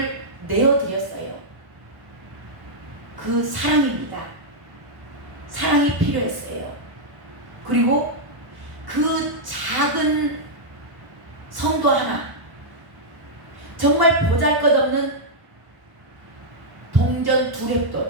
내어드렸어요. 그 사랑입니다. 사랑이 필요했어요. 그리고 그 작은 성도 하나, 정말 보잘것없는 동전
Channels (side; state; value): left; late; 1.0 ms